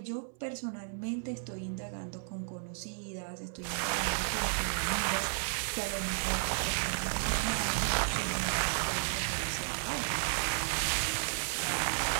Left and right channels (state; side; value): silent; left; 55 dB below the other